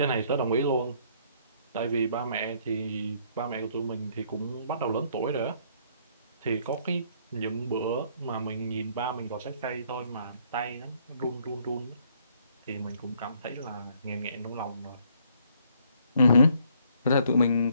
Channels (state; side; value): inverted; both; correlation -0.66